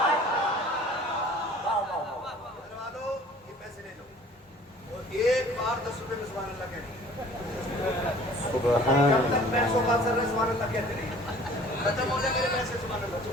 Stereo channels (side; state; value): both; normal; correlation 0.50